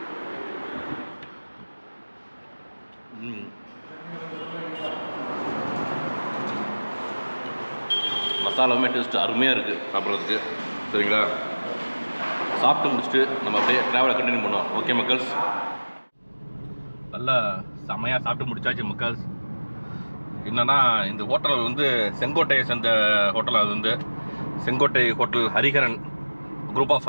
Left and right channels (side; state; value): both; inverted; correlation -1.00